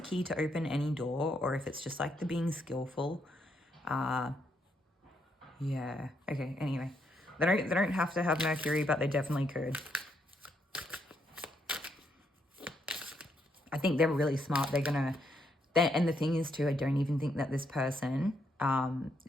key to open any door, or if it's just like the being skillful. Yeah, okay, anyway. They don't have to have Mercury, but they definitely could. I think they're really smart. And the thing is too, I don't even think that this person,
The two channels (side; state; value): both; normal; correlation 0.76